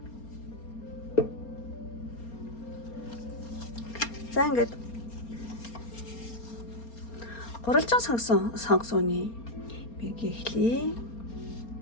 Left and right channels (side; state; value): right; late; 4.3 ms